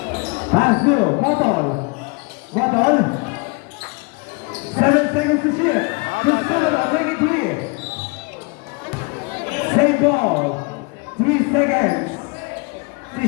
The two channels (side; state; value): right; quieter; 30.5 dB